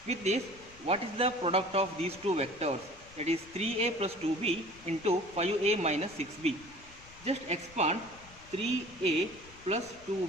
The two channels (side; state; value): left; noise; rumble, 22 dB below the sound